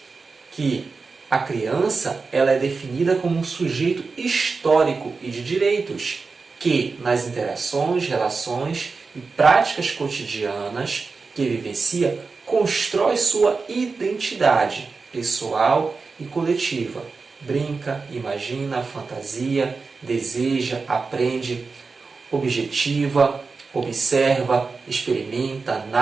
que a criança ela é definida como um sujeito histórico e de direitos, que nas interações, relações e práticas cotidianas que vivencia, constrói sua identidade pessoal e coletiva. Brinca, imagina, fantasia, deseja, aprende, objetiva, observa, experimenta,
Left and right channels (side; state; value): left; quieter; 4.4 dB